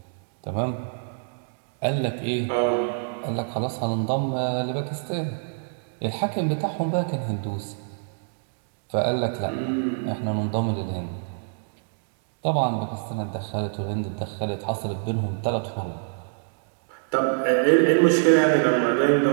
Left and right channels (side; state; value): left; silent; digital silence